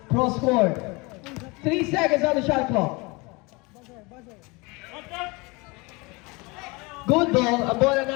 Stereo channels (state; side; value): quieter; right; 26.3 dB